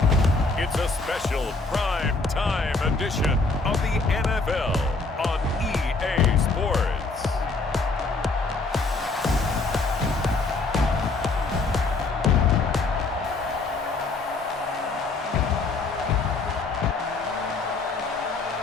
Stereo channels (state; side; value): quieter; right; 3.7 dB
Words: it's a special prime time edition of the NFL on EA Sports.